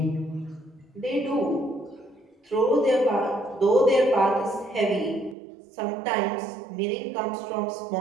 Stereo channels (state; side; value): drops out; left; at 5.4 s